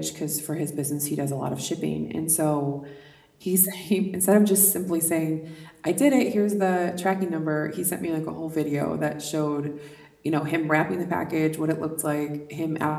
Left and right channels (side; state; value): both; identical; correlation 1.00